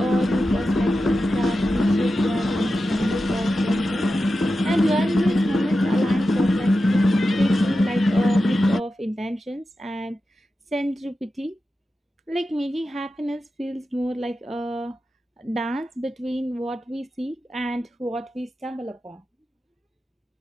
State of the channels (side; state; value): both; normal; correlation 0.91